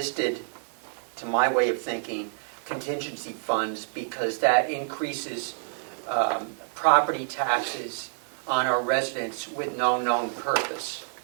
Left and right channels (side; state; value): left; silent; digital silence